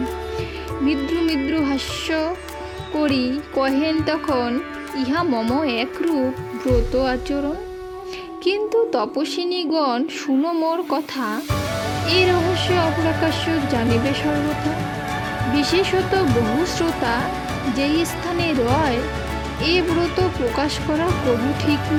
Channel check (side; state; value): both; identical; correlation 1.00